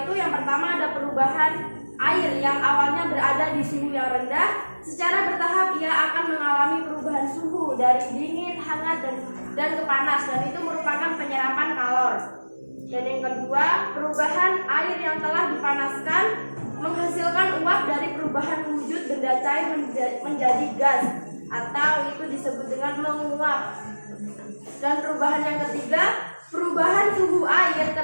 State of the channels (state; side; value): inverted; both; correlation -1.00